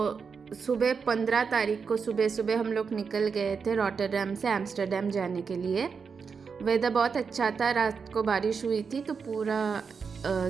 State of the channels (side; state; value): left; quieter; 5.7 dB